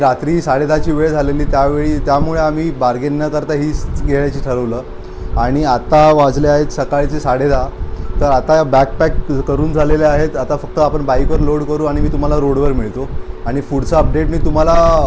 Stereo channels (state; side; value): identical; both; correlation 1.00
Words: 10:30ची वेळ झालेली त्यामुळे आम्ही बार्गेन न करता हीच घेण्याची ठरवलं. आणि आता वाजले आहेत सकाळचे 10:30. तर आता बॅकपॅक करून झालेले आहेत. आता फक्त आपण बाईकवर लोड करू आणि मी तुम्हाला रोडवर मिळतो आणि पुढचा अपडेट मी तुम्हाला